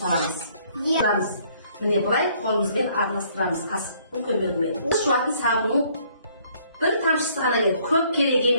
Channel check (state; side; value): inverted; both; correlation -0.63